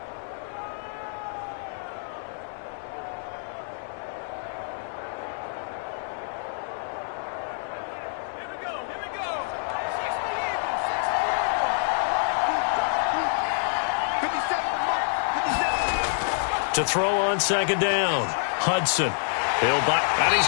To throw on 2nd down. Hudson. He'll buy, and he's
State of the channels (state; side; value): silent; right; digital silence